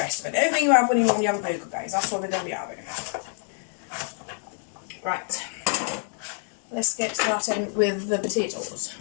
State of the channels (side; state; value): right; silent; 59 dB below the other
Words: of it. Everything you have when you have a burger, guys. That's what we're going to be having. Right. Let's get started with the potatoes.